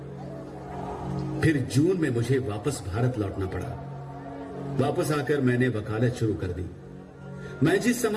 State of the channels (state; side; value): identical; both; correlation 1.00